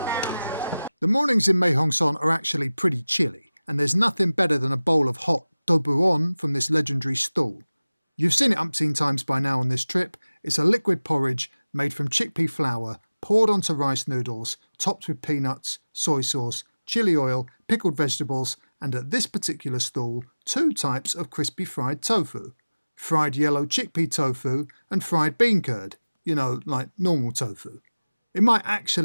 The mornings in Mae Hong Son are actually pretty chilly, and there's nothing better than a bowl of hot dobuon from this legendary stall. You've seen it umpteen times by now on this trip. It's a liquid porridge made from chickpea flour, poured onto rice noodles, topped with peanuts, soy sauce, chili oil, pickled vegetables, and at this particular stall, 2 types of crispy fried tofu. Fried yellow chickpea tofu and fried bean curd, you know, like normal tofu. It might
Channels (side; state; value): both; inverted; correlation -0.98